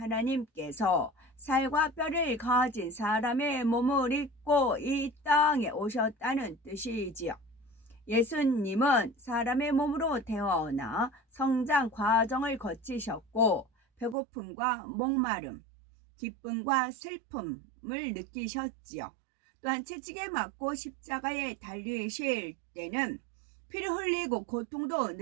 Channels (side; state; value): left; drops out; at 14.2 s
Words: 살과 뼈를 가진 사람의 몸을 입고 이 땅에 오셨다는 뜻이지요. 예수님은 사람의 몸으로 태어나 성장 과정을 거치셨고 배고픔과 목마름, 기쁨과 슬픔을 느끼셨지요. 또한 채찍에 맞고 십자가에 달리실 때는 피를 흘리고 고통도